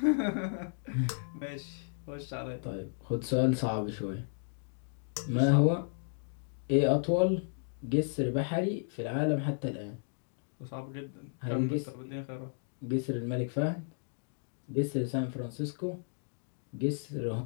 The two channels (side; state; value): right; silent; digital silence